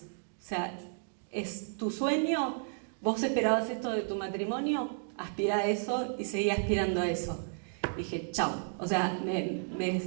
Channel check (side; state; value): left; silent; digital silence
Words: O sea, es tu sueño, vos esperabas esto de tu matrimonio, aspira a eso y seguí aspirando a eso. Dije, chao. O sea,